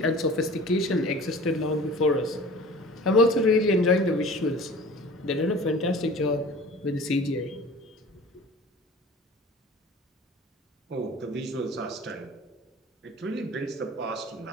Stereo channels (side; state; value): both; normal; correlation 0.42